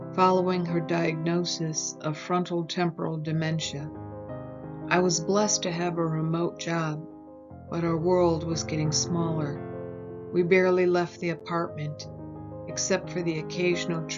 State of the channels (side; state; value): both; identical; correlation 1.00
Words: following her diagnosis of frontal temporal dementia. I was blessed to have a remote job, but our world was getting smaller. We barely left the apartment, except for the occasional